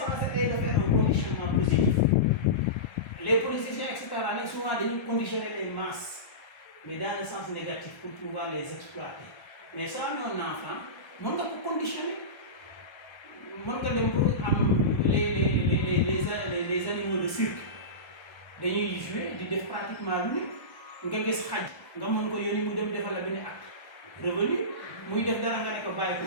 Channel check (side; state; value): right; late; 1.3 ms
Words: est de faire un conditionnement positif. Les politiciens etc. nag souvent dañuy conditionner les masses, mais dans le sens négatif pour pouvoir les exploiter. Mais soo amee un enfant mën nga ko conditionner, mën nga dem pour am les animaux de cirque. Dañuy jouer di def pratiquement lu ne nga gis xaj nga mën ko yónni mu dem defal la benn acte revenu muy def dara nga ne ko bàyyi ko